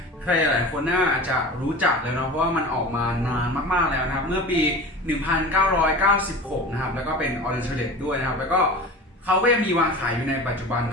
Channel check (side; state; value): both; normal; correlation 0.34